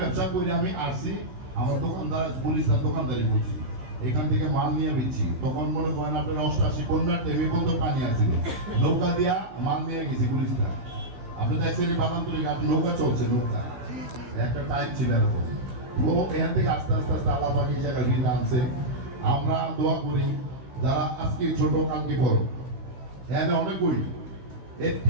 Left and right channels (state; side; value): late; left; 15 ms